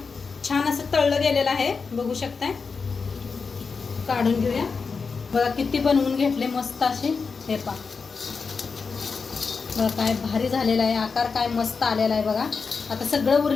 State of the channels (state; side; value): quieter; right; 5.0 dB